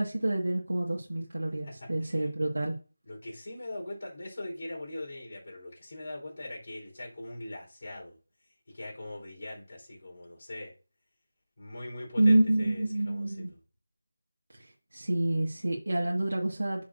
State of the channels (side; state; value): both; inverted; correlation -0.98